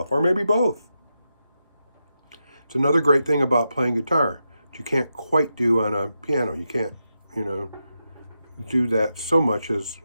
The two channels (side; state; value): both; inverted; correlation -0.87